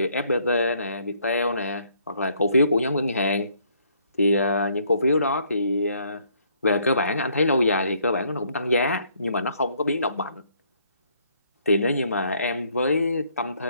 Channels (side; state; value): both; inverted; correlation -0.67